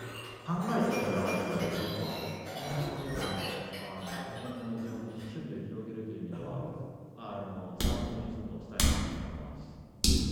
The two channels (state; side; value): identical; both; correlation 1.00